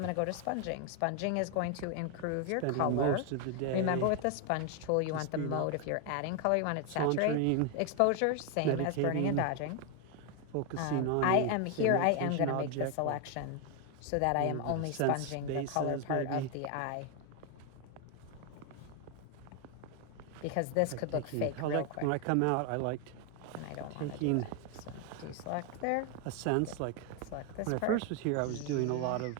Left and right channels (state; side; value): different; both; correlation 0.01